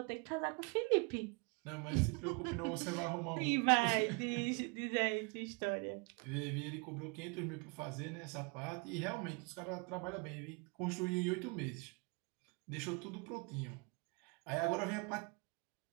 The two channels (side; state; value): left; quieter; 32.0 dB